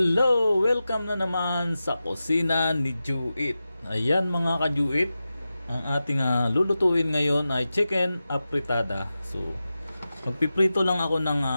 Welcome na naman sa kusina ni Juit. Ayan mga ka-Juit, ang ating lulutuin ngayon ay chicken apritada. So, magpiprito lang ako ng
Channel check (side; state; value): both; inverted; correlation -0.93